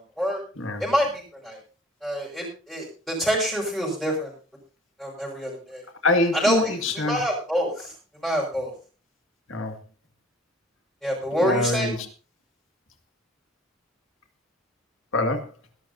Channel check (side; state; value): both; normal; correlation 0.49